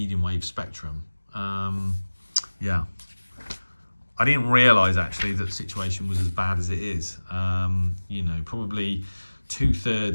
wave spectrum. Yeah, I didn't realise actually that the situation was as bad as it is. You know, probably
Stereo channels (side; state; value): both; inverted; correlation -1.00